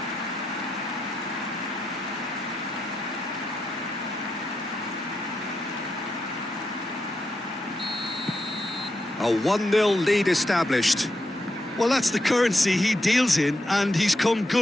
A 1-0 lead established. Well, that's the currency he deals in, and he's come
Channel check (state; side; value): normal; both; correlation 0.84